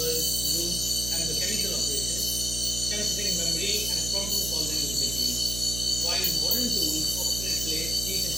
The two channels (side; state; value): right; noise; hum, 6 dB below the sound